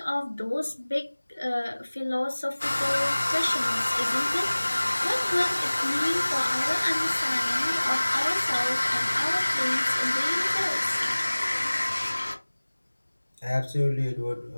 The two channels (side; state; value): both; inverted; correlation -1.00